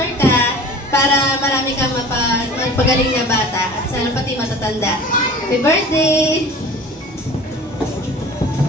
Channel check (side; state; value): both; normal; correlation 0.41